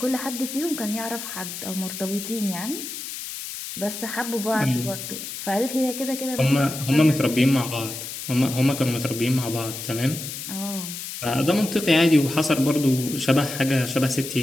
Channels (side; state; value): left; noise; hiss, 8 dB below the sound